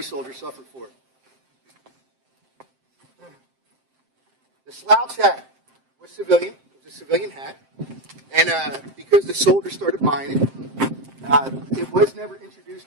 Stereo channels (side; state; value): left; late; 7.6 ms